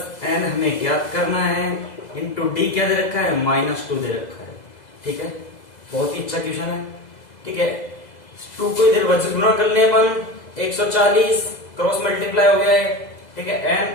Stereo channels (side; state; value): right; late; 2.0 ms